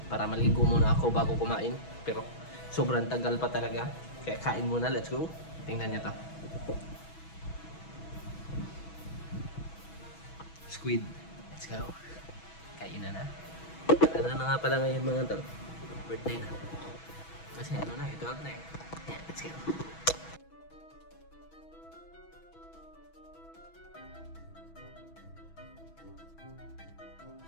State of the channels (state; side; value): late; right; 6.1 ms